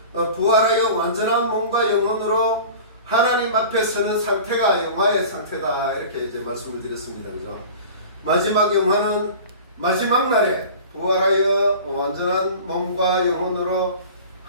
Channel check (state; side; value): inverted; both; correlation -0.39